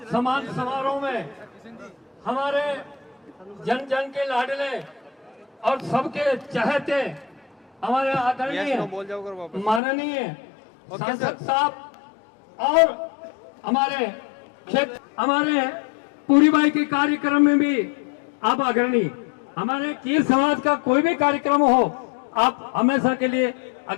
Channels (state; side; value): drops out; right; at 9.8 s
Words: सम्मान समारोह में हमारे जन जन के लाडले और सबके चाहते हमारे आदरणीय माननीय सांसद साहब और हमारे क्षेत्र, हमारे पूरी बाई के कार्यक्रम में भी आप अग्रणी, हमारे कीर समाज का कोई भी कार्यक्रम हो आप हमेशा के लिए